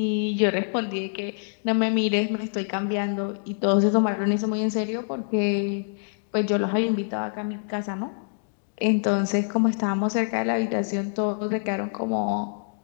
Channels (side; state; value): right; silent; 61 dB below the other